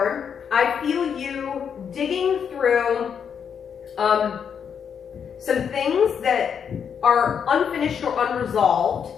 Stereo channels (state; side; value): quieter; right; 7.4 dB